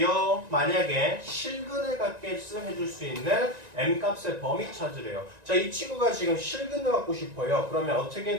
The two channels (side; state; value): left; late; 1.9 ms